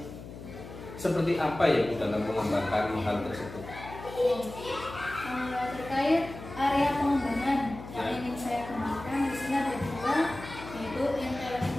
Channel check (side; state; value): left; noise; hum, 13 dB below the sound